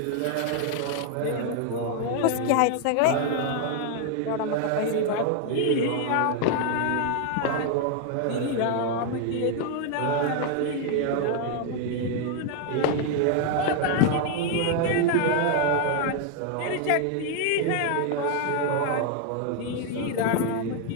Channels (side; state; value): both; different; correlation 0.00